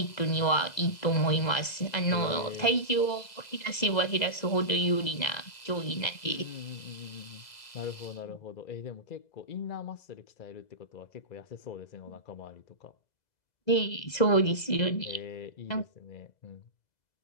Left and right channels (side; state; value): right; late; 2.0 ms